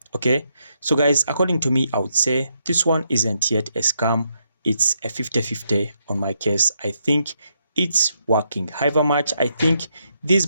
Okay, so guys, according to me, I would say this one isn't yet a scam. It's a 50-50 on my case. I think it's working. However much I think these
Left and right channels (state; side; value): inverted; both; correlation -0.79